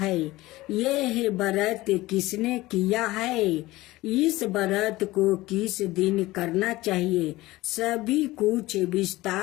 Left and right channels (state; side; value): quieter; right; 18.7 dB